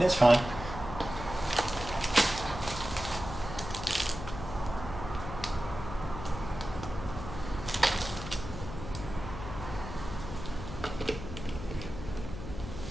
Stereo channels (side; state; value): left; noise; hum, 9 dB below the sound